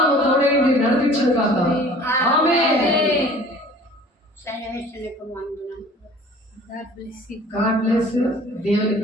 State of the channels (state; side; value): normal; both; correlation 0.48